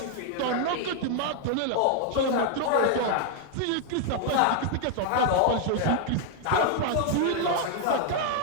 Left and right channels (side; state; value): both; different; correlation 0.00